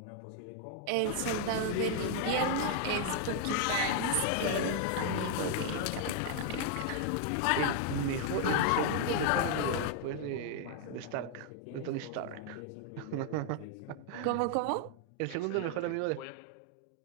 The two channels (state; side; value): different; both; correlation 0.00